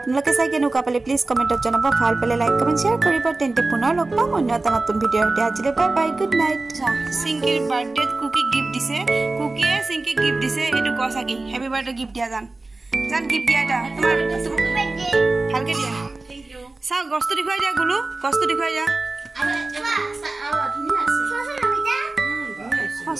চাই কেনেকুৱা পালে প্লিজ কমেণ্টত জনাব ভাল পালে লাইক কমেণ্ট শ্বেয়াৰ কৰিব তেন্তে পুনৰ লগ পাম অন্য এটা নতুন ভিডিঅ'ৰ সৈতে আজিলৈ বাই বাই গুড নাইট চিংকিৰ বাৰ্থডেত কুকি গিফ্ট দিছে কুকিয়ে চিংকিক গিফ্ট দিছে এইটো ক চাকি হেপী বাৰ্থডে গিফ্ট দিয়া জান গিফ্ট দিয়া এটা তোমাৰ ভালকৈ দিয়া চাওক গছটো দেখুৱাই দিয়া গুলু গছটো দেখুৱাই দিয়া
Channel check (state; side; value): quieter; left; 3.2 dB